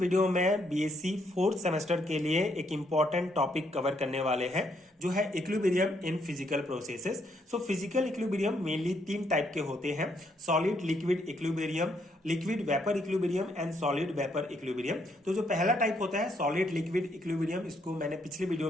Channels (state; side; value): normal; both; correlation 0.73